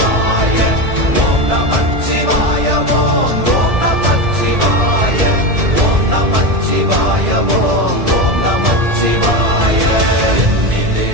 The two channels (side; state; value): left; late; 1.7 ms